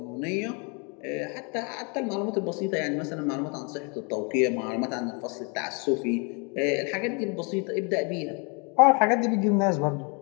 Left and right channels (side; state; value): right; quieter; 33.9 dB